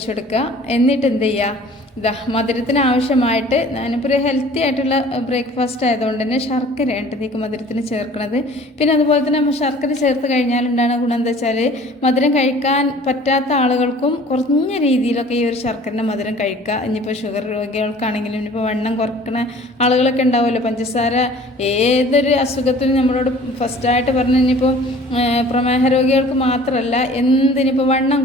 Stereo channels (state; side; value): normal; both; correlation 0.49